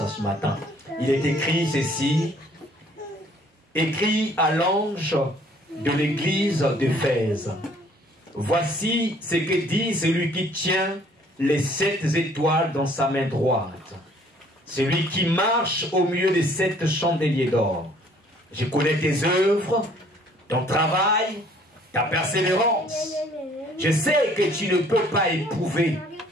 ce matin. Il est écrit ceci: écrit à l'ange de l'église d'Éphèse. Voici ce que dit celui qui tient les 7 étoiles dans sa main droite, celui qui marche au milieu des 7 chandeliers d'or. Je connais tes œuvres, ton travail, ta persévérance. Je sais que tu ne peux pas éprouver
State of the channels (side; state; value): both; normal; correlation 0.59